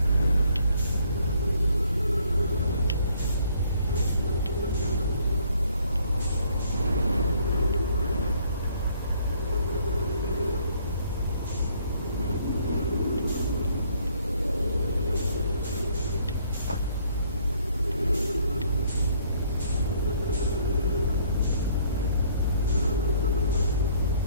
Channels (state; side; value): inverted; both; correlation -0.63